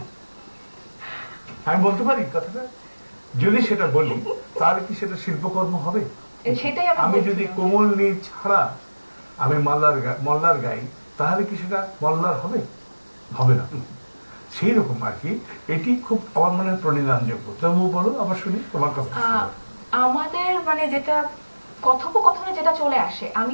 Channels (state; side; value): inverted; both; correlation -1.00